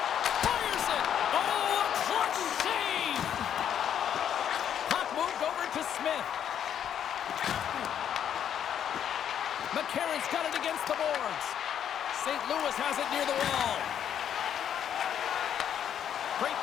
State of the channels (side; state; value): right; quieter; 9.3 dB